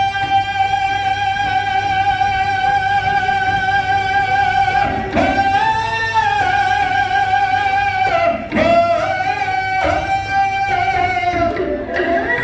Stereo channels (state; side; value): identical; both; correlation 1.00